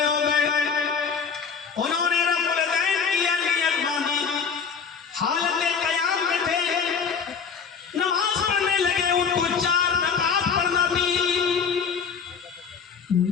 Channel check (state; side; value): quieter; right; 6.2 dB